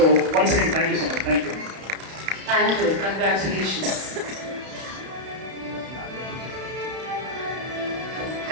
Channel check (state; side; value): late; left; 32 ms